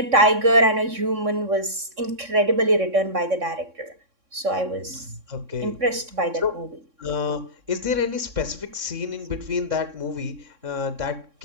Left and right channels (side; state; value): left; late; 3.6 ms